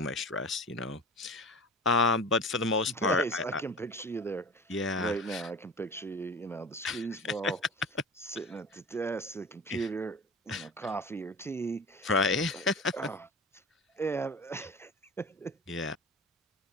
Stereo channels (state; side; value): normal; both; correlation 0.34